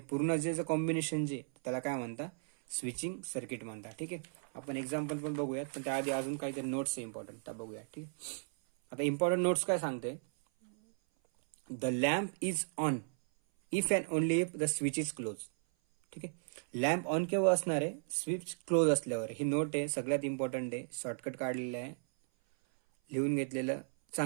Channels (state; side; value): silent; left; 54 dB below the other